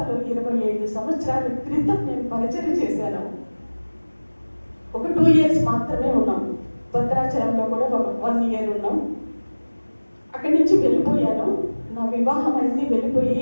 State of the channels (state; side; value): inverted; both; correlation -1.00